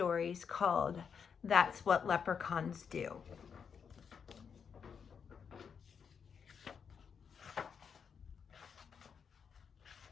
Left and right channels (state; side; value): quieter; right; 6.7 dB